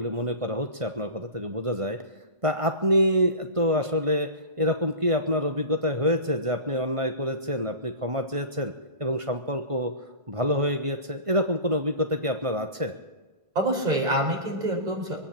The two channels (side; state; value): left; late; 1.5 ms